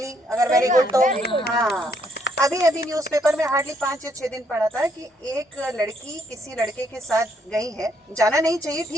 अगर वेरी गुड तो। हाँ, अभी न्यूज़पेपर में हार्डली 5 या 6 दिन पढ़ा था कि एक लड़की किसी लड़के के साथ गई है। जाना नहीं चाहिए,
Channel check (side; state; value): both; normal; correlation 0.71